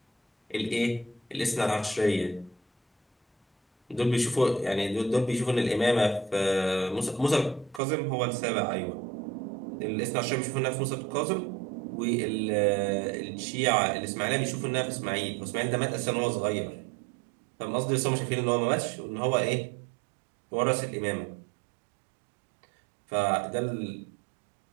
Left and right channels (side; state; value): left; drops out; at 7.8 s